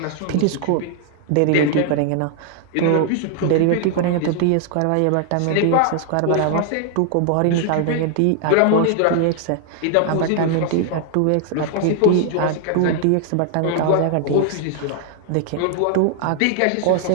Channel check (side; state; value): both; different; correlation 0.00